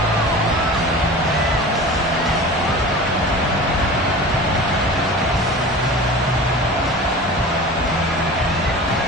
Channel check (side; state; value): both; normal; correlation 0.36